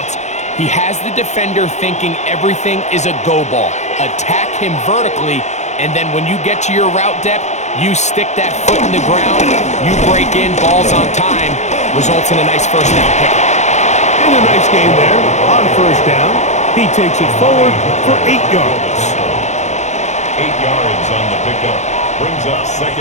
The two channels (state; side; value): late; right; 0.33 ms